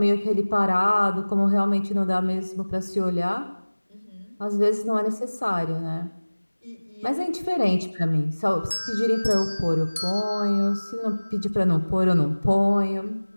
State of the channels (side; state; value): both; inverted; correlation -1.00